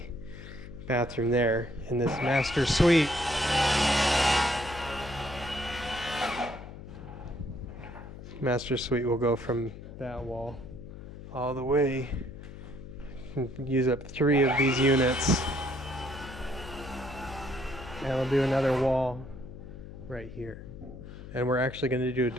bathroom there. And this master suite will go from that wall all the way and use up 3 of these units, and we'll do another wall right here. And we're actually going to do a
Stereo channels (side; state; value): left; noise; hum, 13 dB below the sound